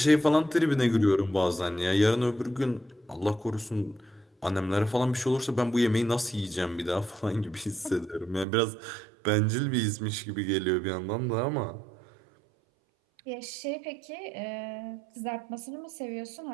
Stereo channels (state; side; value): drops out; left; at 8.5 s